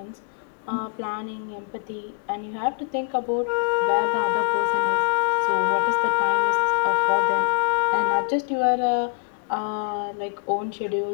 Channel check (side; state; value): right; silent; digital silence